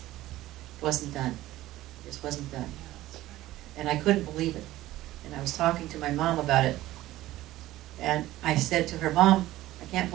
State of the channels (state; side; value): quieter; left; 15.8 dB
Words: wasn't done. It just wasn't done. And I couldn't believe it. And I was talking to my mom about it. And I said to her, Mom, I can't